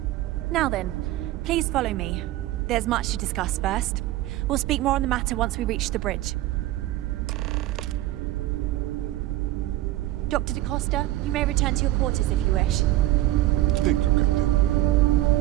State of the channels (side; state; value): left; quieter; 15.6 dB